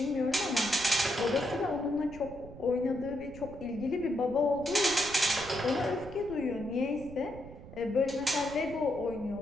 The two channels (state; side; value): noise; right; rumble, 16 dB below the sound